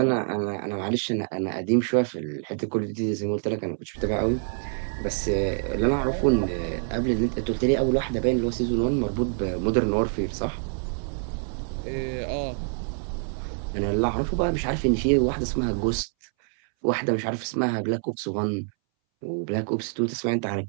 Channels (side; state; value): left; silent; 61 dB below the other